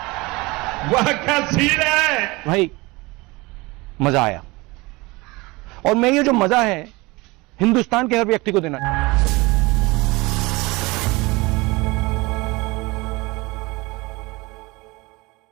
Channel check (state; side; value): quieter; left; 23.4 dB